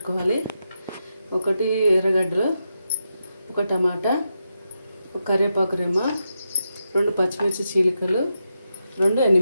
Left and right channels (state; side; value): inverted; both; correlation -0.86